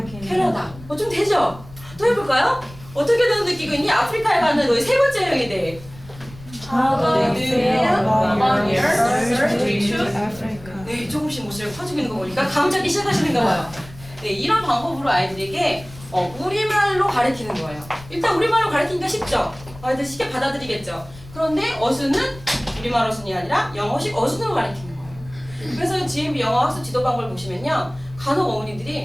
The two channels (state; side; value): noise; left; rumble, 19 dB below the sound